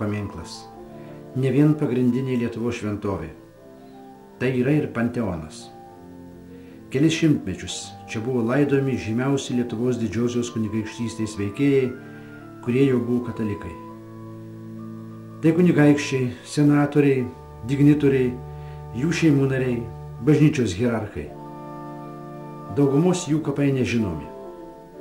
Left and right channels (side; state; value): both; identical; correlation 1.00